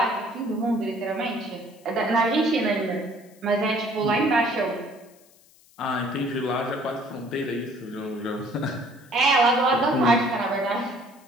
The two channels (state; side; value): noise; left; hiss, 28 dB below the sound